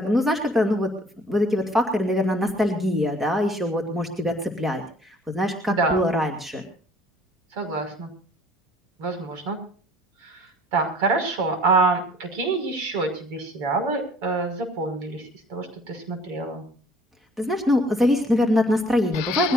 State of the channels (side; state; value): both; normal; correlation 0.54